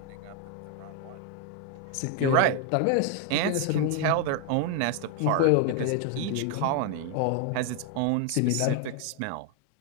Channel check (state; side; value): different; both; correlation 0.01